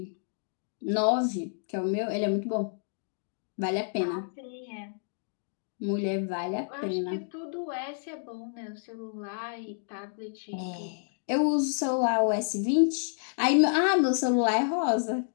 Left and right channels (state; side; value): silent; right; digital silence